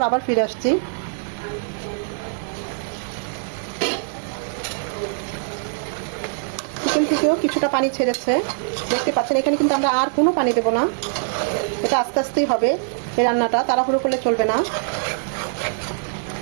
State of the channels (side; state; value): left; silent; digital silence